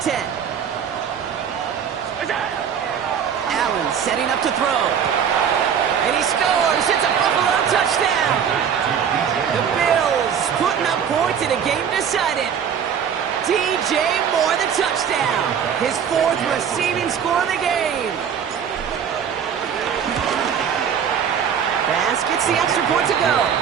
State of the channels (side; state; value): left; quieter; 7.8 dB